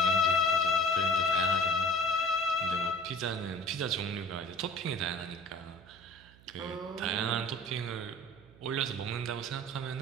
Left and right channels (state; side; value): noise; right; hum, 24 dB below the sound